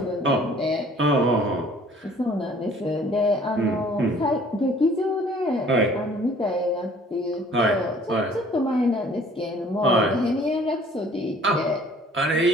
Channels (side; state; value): both; normal; correlation 0.54